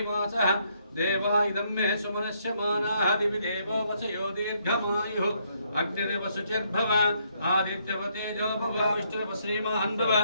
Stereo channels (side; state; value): both; inverted; correlation -0.72